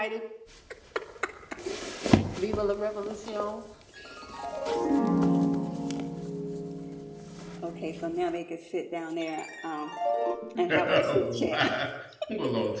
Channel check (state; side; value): identical; both; correlation 1.00